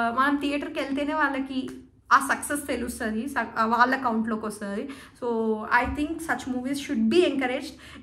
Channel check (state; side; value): identical; both; correlation 1.00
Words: మనం థియేటర్కి వెళ్తేనే వాళ్ళకి ఆ సక్సెస్ తెలుస్తుంది, వాళ్ళ అకౌంట్లోకి వస్తుంది. So I think such movies should be encouraged.